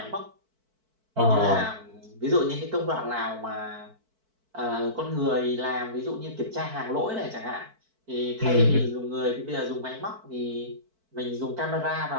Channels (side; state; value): left; late; 4.5 ms